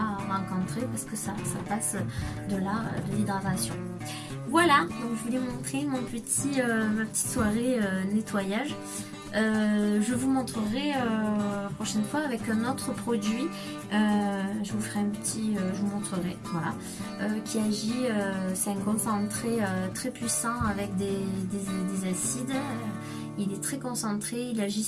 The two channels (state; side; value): identical; both; correlation 1.00